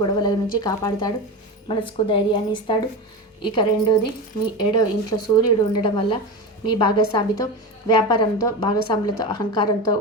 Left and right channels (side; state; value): both; normal; correlation 0.23